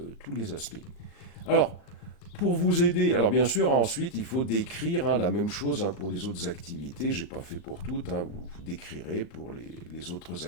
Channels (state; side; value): late; right; 38 ms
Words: les aspects. Alors, pour vous aider, alors bien sûr, ensuite, il faut décrire, hein, la même chose, hein, pour les autres activités. Je n'ai pas fait pour toutes, hein, vous décrirez pour les autres